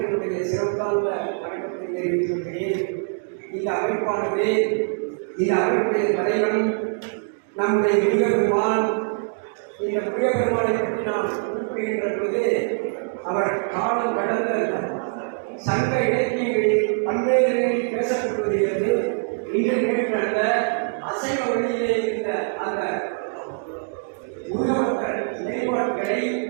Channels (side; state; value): left; silent; 63 dB below the other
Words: சிறந்தாழ்ந்த வணக்கத்தை தெரிவித்துக் கொள்கிறேன். இந்த அமைப்பானது இந்த அமைப்புடைய தலைவன் நம்முடைய முருகப்பெருமான். இந்த முருகப்பெருமானை பற்றி நாம் குறிப்பிடுகின்ற பொழுது அவர் காலம் கடந்த சங்க இலக்கியங்களில் பல்வேறு பேசப்பட்டு வருகிறது. இன்று நிகழ்ந்த அசைவ வழியிலே இருந்த அந்த முருகபக்தர் நிலைப்பாடுகளை